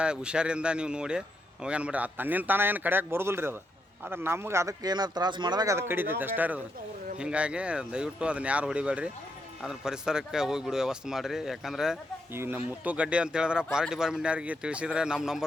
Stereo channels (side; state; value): both; normal; correlation 0.80